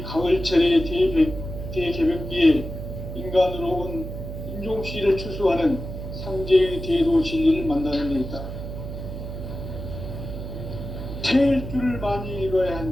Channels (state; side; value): noise; right; hum, 8 dB below the sound